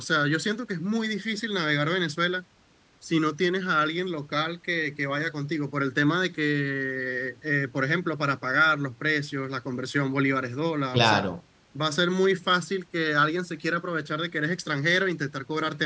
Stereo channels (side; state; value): both; identical; correlation 1.00